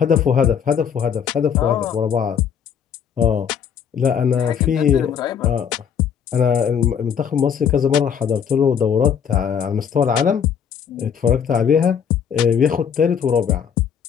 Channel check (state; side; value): quieter; right; 7.7 dB